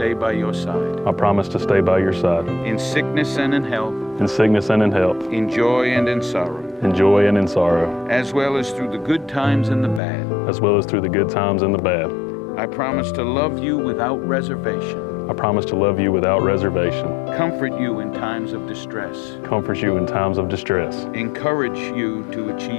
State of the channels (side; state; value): right; drops out; at 10.0 s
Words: by your side, I promise to stay by your side, in sickness and in health, in sickness and in health, in joy and in sorrow, in joy and in sorrow, as well as through the good times and the bad. as well as through the good times and the bad. I promise to love you without reservation, I promise to love you without reservation, comfort you in times of distress, comfort you in times of distress, encourage you to